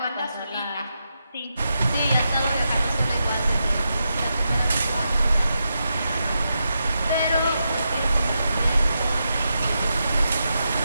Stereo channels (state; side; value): inverted; both; correlation -0.86